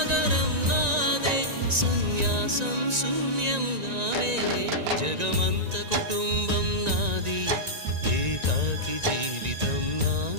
నాదే, సన్యాసం శూన్యం నావే. జగమంత కుటుంబం నాది, ఏకాకి జీవితం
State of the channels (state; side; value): late; left; 1.9 ms